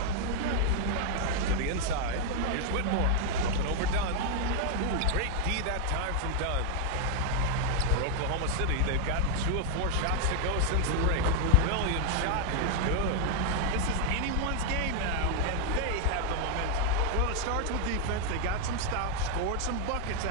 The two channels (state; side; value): different; both; correlation 0.00